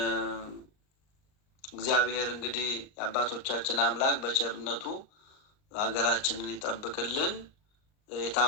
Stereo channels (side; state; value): right; late; 38 ms